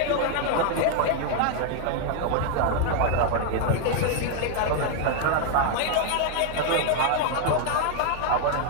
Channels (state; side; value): different; both; correlation 0.00